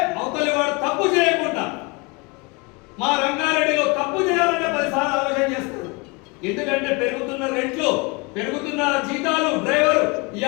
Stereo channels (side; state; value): right; quieter; 28.0 dB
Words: అవతలి వాడు తప్పు చేయకుండా. మా రంగారెడ్డిలో తప్పు చేయాలంటే 10 సార్లు ఆలోచన చేస్తారు. ఎందుకంటే పెరుగుతున్న రేట్లు, పెరుగుతున్న జీతాలు, డ్రైవర్